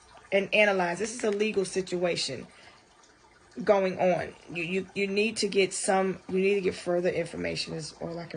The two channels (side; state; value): both; identical; correlation 1.00